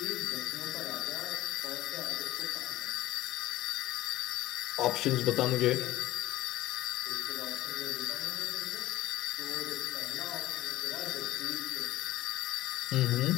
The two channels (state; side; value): quieter; right; 16.1 dB